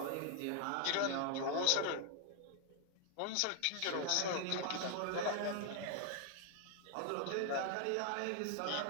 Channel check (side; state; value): both; different; correlation 0.00